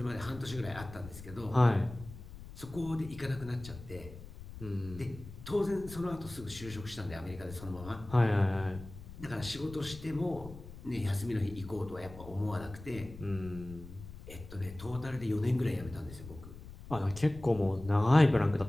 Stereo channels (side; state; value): left; noise; rumble, 14 dB below the sound